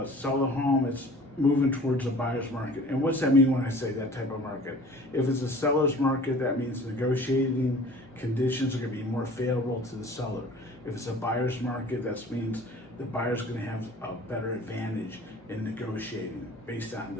sell a home, it's moving towards a buyer's market. And what's that mean when I say that type of market? If it's a seller's market, that means negotiating conditions are going to be more favorable to the seller. If it's a buyer's market, that means the buyer's going to have a better advantage in negotiating based on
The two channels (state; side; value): normal; both; correlation 0.46